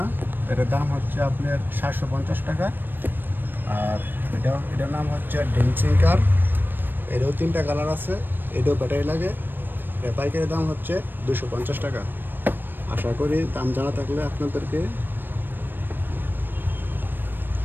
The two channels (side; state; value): left; late; 0.094 ms